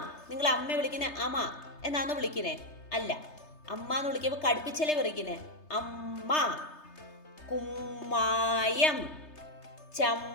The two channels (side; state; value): right; late; 3.3 ms